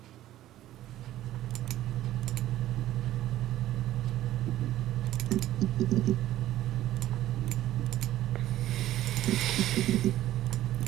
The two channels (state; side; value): quieter; left; 13.9 dB